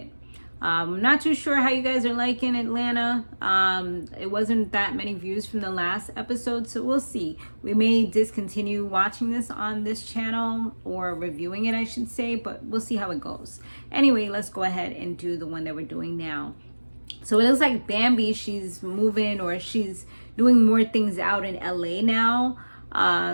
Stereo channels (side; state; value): both; inverted; correlation -1.00